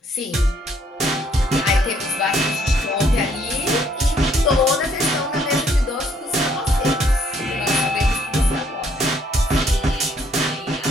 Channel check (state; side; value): normal; both; correlation 0.67